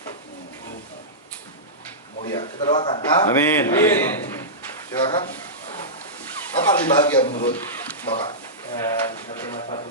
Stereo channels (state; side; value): normal; both; correlation -0.15